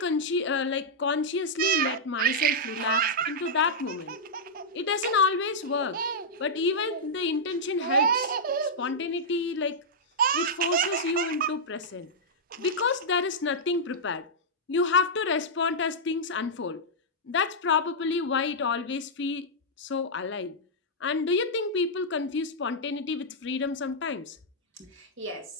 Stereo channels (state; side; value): normal; both; correlation -0.08